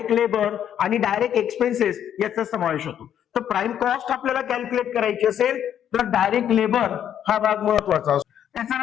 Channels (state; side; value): quieter; right; 9.8 dB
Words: लेबर आणि डायरेक्ट एक्सपेन्सेस याचा समावेश होतो. तर प्राइम कॉस्ट आपल्याला कॅल्क्युलेट करायची असेल तर डायरेक्ट लेबर हा भाग महत्वाचा असतो.